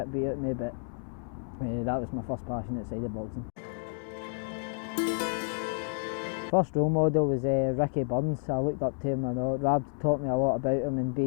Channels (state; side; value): silent; right; 58 dB below the other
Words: beat out of me, but that was my first passion outside of boxing. First role model was Ricky Burns. I looked up to him, and Rab taught me a lot about him, and